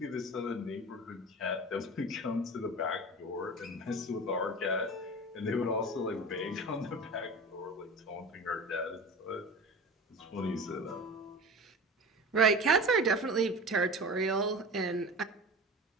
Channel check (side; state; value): both; normal; correlation 0.32